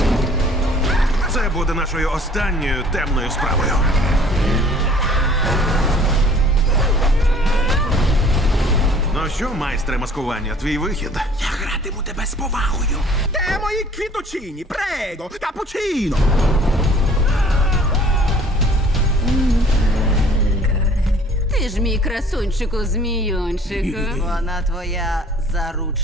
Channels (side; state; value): both; normal; correlation 0.53